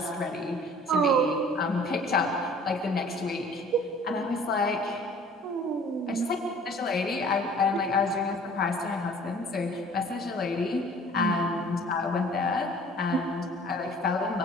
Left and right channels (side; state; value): both; normal; correlation 0.51